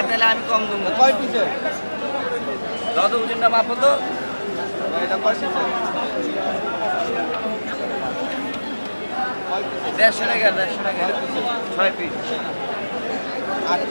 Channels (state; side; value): inverted; both; correlation -1.00